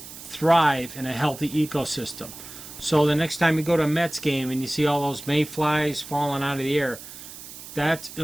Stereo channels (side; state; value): right; noise; hiss, 14 dB below the sound